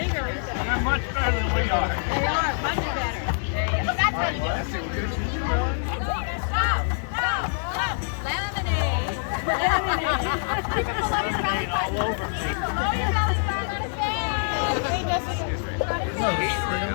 They're much better than we are. They are much better. That's how you do it. Stop. Lemonade. Keep it below your belly button. Below your belly button.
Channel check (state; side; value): silent; right; digital silence